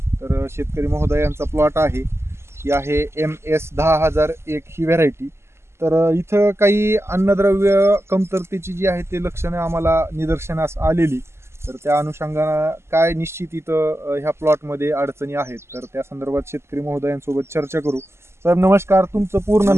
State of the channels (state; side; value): late; left; 0.12 ms